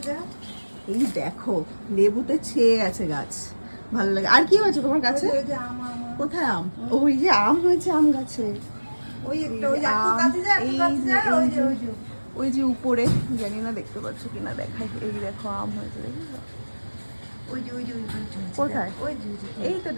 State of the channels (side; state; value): both; inverted; correlation -1.00